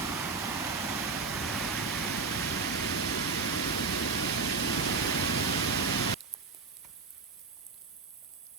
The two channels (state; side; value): quieter; left; 4.8 dB